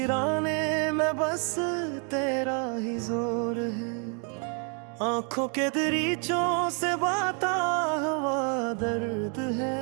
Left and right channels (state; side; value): quieter; left; 38.5 dB